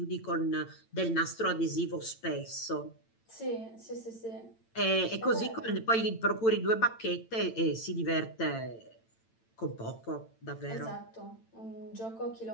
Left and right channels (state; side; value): late; right; 8.9 ms